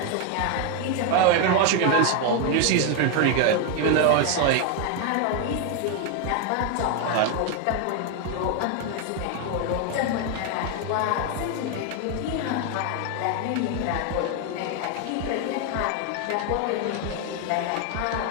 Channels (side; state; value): both; different; correlation 0.01